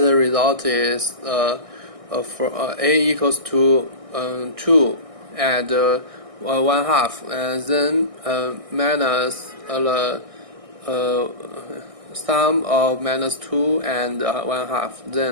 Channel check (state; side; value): late; left; 1.6 ms